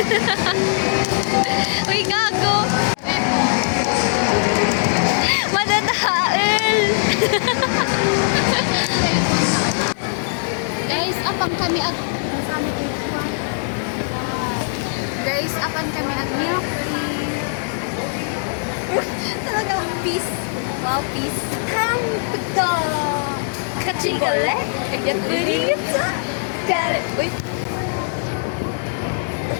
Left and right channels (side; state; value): right; silent; digital silence